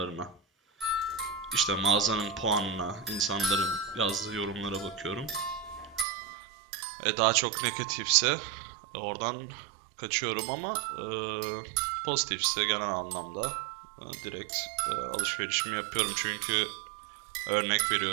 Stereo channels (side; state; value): left; drops out; at 6.1 s